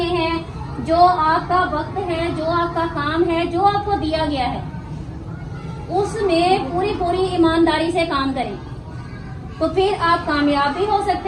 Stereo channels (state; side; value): identical; both; correlation 1.00